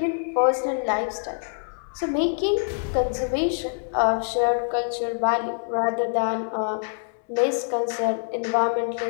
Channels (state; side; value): silent; right; digital silence